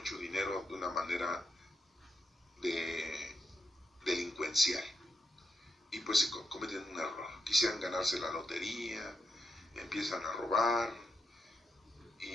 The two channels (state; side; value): normal; both; correlation 0.82